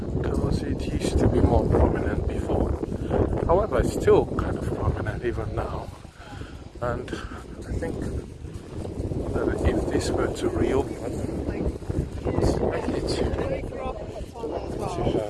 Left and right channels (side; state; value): both; identical; correlation 1.00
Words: because it used to be more prominent before. However, it's still kind of prominent even now. And I think that if this were to reopen, it's likely to